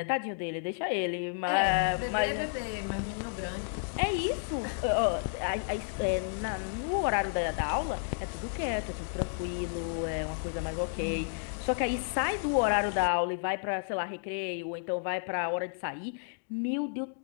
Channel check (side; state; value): right; silent; digital silence